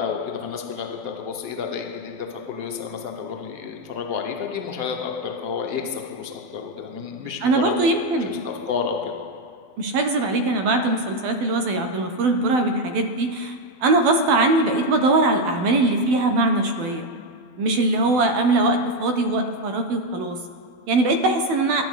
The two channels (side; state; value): left; late; 12 ms